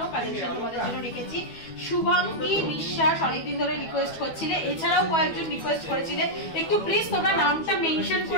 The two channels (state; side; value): late; right; 12 ms